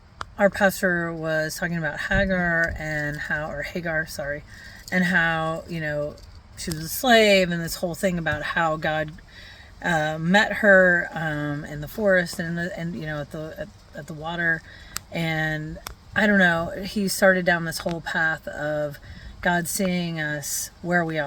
our pastor was talking about Hagar, sorry, and how she was a slave, and this whole thing about how God met her in the forest and at the water, and I don't know. He started down this whole path of God seeing us where we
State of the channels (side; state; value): both; identical; correlation 1.00